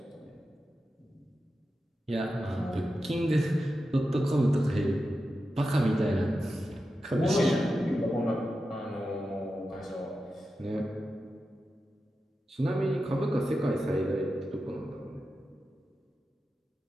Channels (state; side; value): normal; both; correlation 0.91